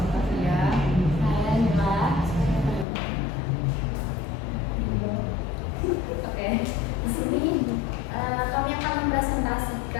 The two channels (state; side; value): drops out; right; at 2.9 s